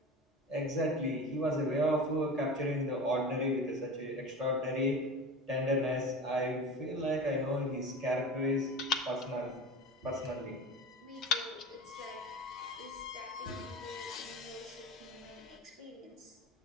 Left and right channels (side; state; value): both; normal; correlation 0.31